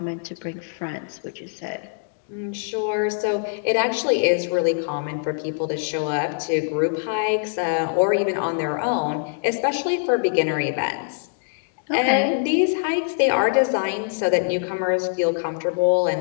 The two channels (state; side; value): silent; right; digital silence